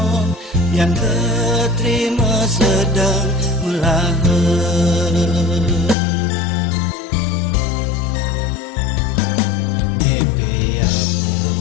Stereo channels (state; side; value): drops out; right; at 6.0 s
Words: yang keterima sedang melahir